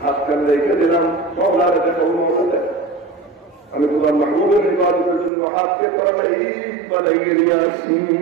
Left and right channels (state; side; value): drops out; left; at 5.3 s